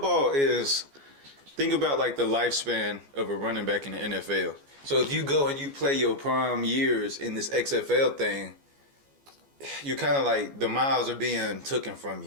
is. Think about like the lifespan of a running back in the NFL. So if you go and you play your prime years in this XFL thing. You kind of like the miles are being taken from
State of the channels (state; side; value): late; left; 14 ms